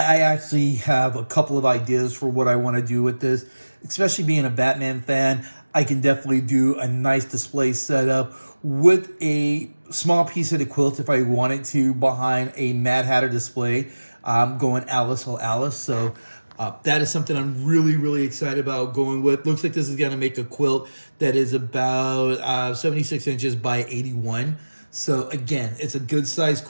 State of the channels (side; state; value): both; inverted; correlation -1.00